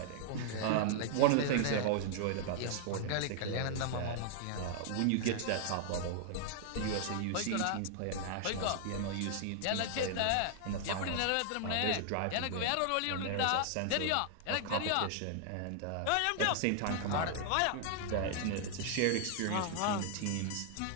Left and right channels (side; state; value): both; different; correlation 0.00